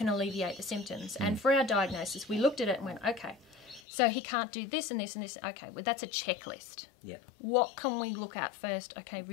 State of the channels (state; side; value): drops out; right; at 3.8 s